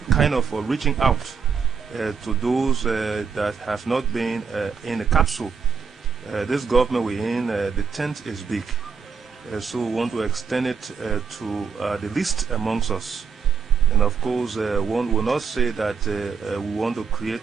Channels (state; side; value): quieter; left; 6.0 dB